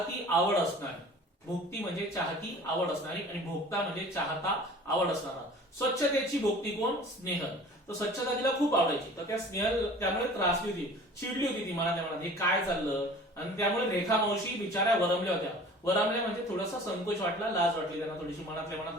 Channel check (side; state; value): both; normal; correlation 0.45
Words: आवड असणारी. भोक्ती म्हणजे चाहती आवड असणारी आणि भोक्ता म्हणजे चाहता आवड असणारा. स्वच्छतेची भोक्ती कोण, स्नेहल. तर स्वच्छता तिला खूप आवडायची. तर त्या स्नेहल त्यामुळे त्रासली होती, चिडली होती ती मनात मनात, हे काय चाललं. आणि त्यामुळे रेखा मावशी बिचाऱ्या वरमल्या होत्या. वरमल्या म्हणजे थोडासा संकोच वाटला, लाज वाटली त्यांना, थोडीशी मनातल्या मनात